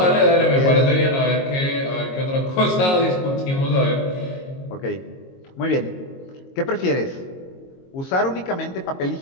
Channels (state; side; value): late; right; 22 ms